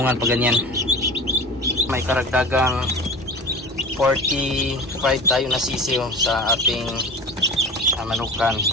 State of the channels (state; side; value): normal; both; correlation 0.34